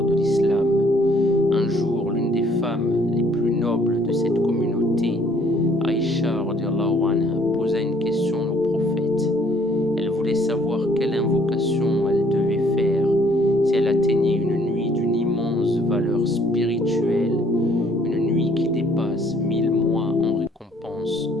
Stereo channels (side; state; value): both; normal; correlation 0.61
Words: de l'islam. Un jour, l'une des femmes les plus nobles de cette communauté, Aïcha radiallahu anha, posa une question au prophète. Elle voulait savoir quelle invocation elle devait faire si elle atteignait une nuit d'une immense valeur spirituelle, une nuit qui dépasse 1000 mois en récompense.